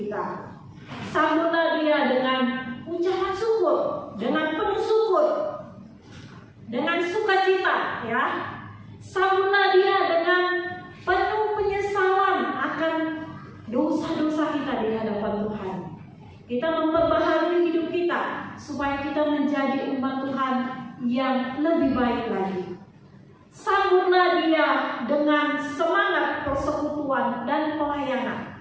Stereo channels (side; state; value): both; identical; correlation 1.00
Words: Sambutlah Dia dengan ucapan syukur, dengan penuh syukur, dengan sukacita, ya. Sambutlah Dia dengan penuh penyesalan akan dosa-dosa kita di hadapan Tuhan. Kita memperbaharui hidup kita supaya kita menjadi umat Tuhan yang lebih baik lagi. Sambutlah Dia dengan semangat persekutuan dan